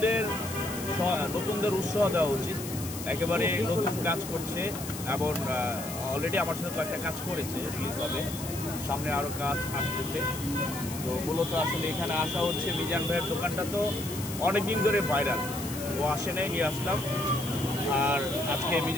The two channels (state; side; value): noise; left; hiss, 10 dB below the sound